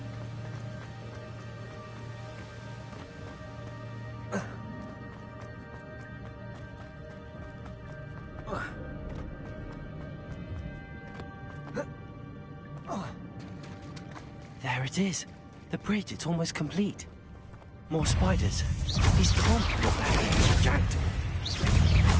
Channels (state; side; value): identical; both; correlation 1.00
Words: There it is. The bridge, it's almost complete. More spiders. These can't be what happened to Jackdaw.